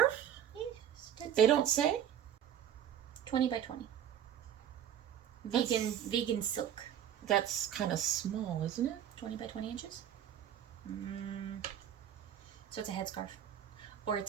Yes. They don't say? 20 by 20. Vegan silk. That's kind of small, isn't it? 20 by 20 inches? So it's a headscarf. Or it's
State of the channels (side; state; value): left; quieter; 9.8 dB